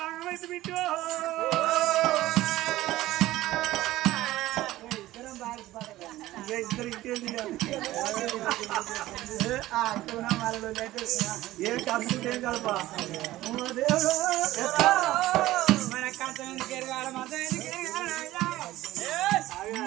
ఆగమైతే బిట్టు ఇద్దరు ఇంకేంది ఏం కలుపుకుంటే ఏం కలపా మన కంచం ఎందుకు ఎరగాలి మతం ఎందుకు ఎరగాలి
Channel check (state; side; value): quieter; left; 16.1 dB